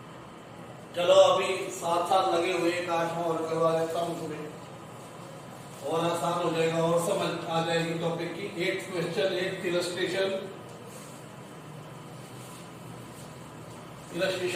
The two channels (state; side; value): identical; both; correlation 1.00